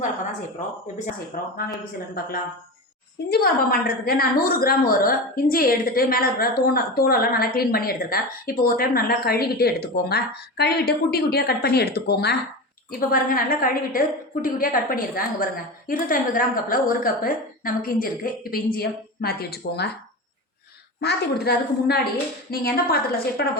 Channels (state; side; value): normal; both; correlation 0.25